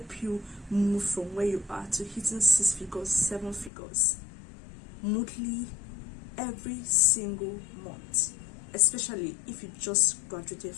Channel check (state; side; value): drops out; right; at 3.7 s